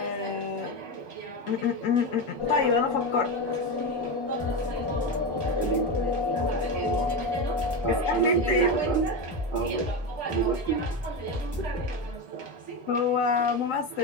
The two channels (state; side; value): normal; both; correlation 0.16